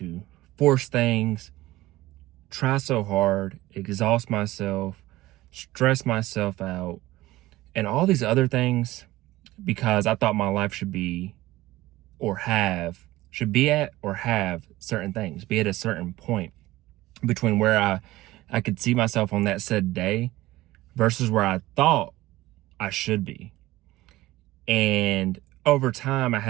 force things, try so hard, exhaust myself, stress myself out, and all these other things because I thought my life should be at or have certain things, be at a certain point between where I could see myself on that said day versus where I thought I should be. And over time, I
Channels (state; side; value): quieter; left; 17.4 dB